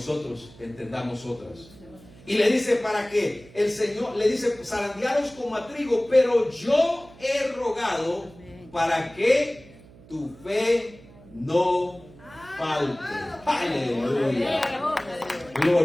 entendamos otras. Y le dice para que el Señor, le dice: zarandearos como a trigo, pero yo he rogado para que tu fe no falte. Aleluya.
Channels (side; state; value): right; noise; hum, 23 dB below the sound